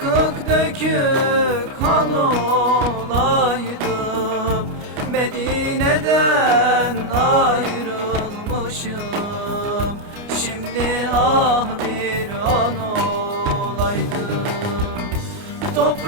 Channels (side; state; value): left; late; 29 ms